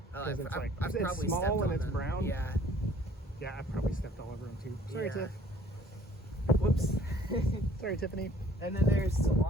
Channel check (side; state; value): both; normal; correlation 0.56